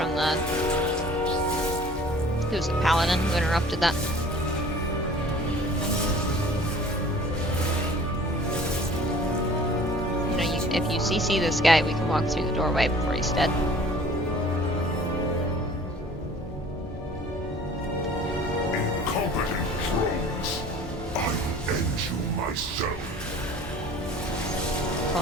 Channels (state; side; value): normal; both; correlation 0.48